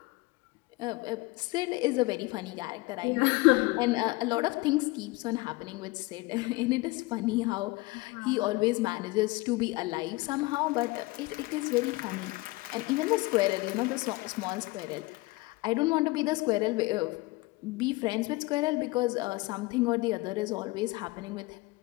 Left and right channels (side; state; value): right; quieter; 22.6 dB